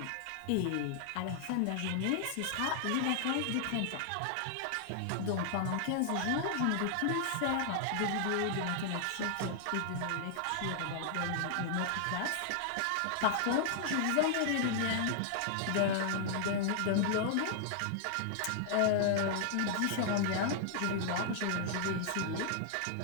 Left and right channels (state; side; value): different; both; correlation -0.01